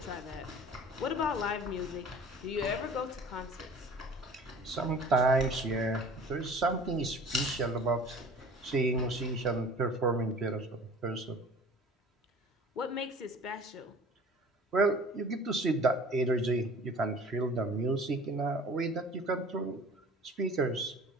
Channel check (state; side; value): normal; both; correlation 0.45